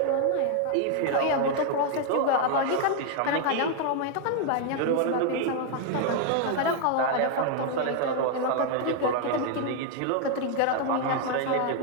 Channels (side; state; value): both; different; correlation 0.00